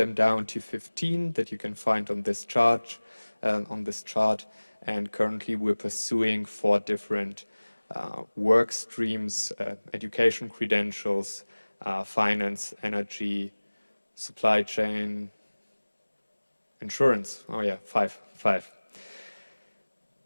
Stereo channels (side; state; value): both; inverted; correlation -1.00